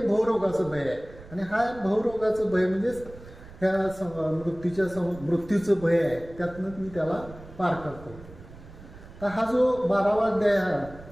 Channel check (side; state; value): right; noise; rumble, 18 dB below the sound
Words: भवरोगाचं भय आहे. आणि हा भवरोगाचं भय म्हणजेच ह्या मृत्यूचं भय आहे, त्यातनं मी त्याला पार करतो. तर हा जो 12वा अध्याय